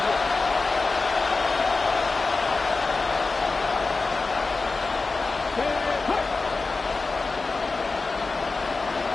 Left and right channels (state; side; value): quieter; right; 3.9 dB